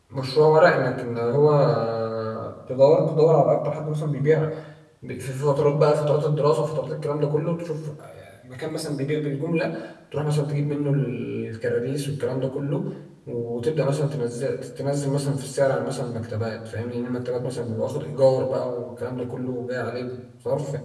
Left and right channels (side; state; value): both; identical; correlation 1.00